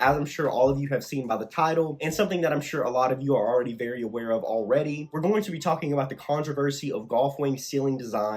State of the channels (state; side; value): identical; both; correlation 1.00